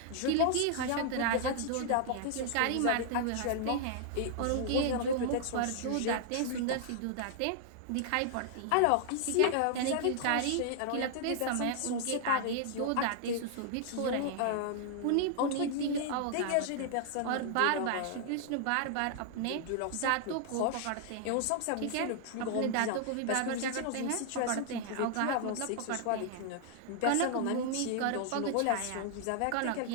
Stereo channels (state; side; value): different; both; correlation 0.00